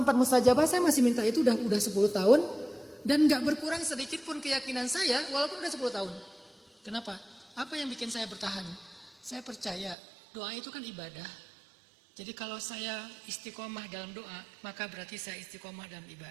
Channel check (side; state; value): left; drops out; at 10.0 s